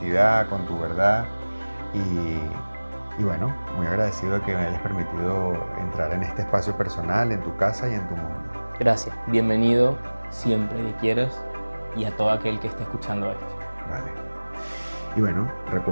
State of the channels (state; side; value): inverted; both; correlation -1.00